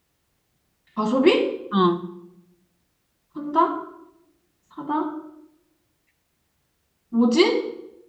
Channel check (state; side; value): identical; both; correlation 1.00